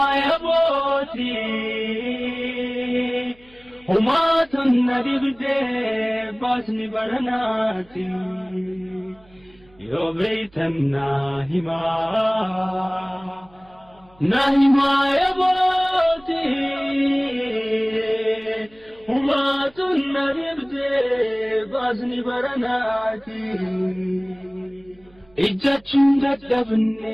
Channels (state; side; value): noise; right; hum, 29 dB below the sound